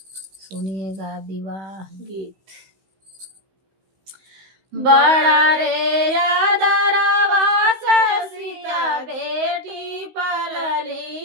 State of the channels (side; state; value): left; late; 16 ms